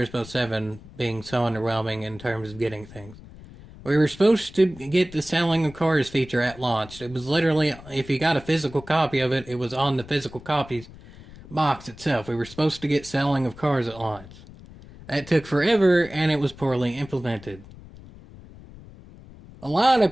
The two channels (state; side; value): noise; left; rumble, 19 dB below the sound